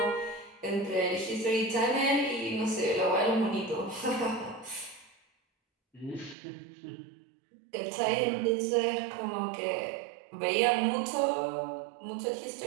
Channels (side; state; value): left; drops out; at 6.4 s